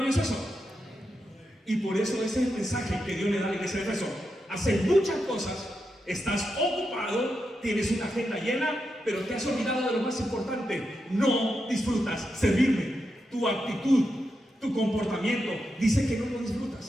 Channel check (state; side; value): normal; both; correlation 0.86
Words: eso? Y por eso ese es el mensaje que Dios le da a la iglesia de Éfeso. Haces muchas cosas, estás ocupado, tienes una agenda llena, pero te has olvidado de lo más importante: no disfrutas servirme. Tu actitud, tu comportamiento dice que no lo